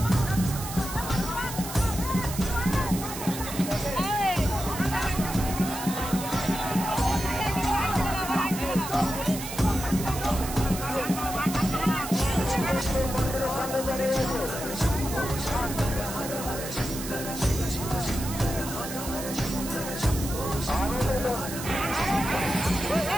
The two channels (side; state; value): right; noise; hiss, 9 dB below the sound